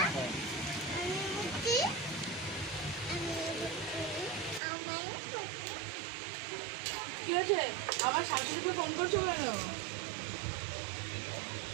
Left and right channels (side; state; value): left; drops out; at 4.6 s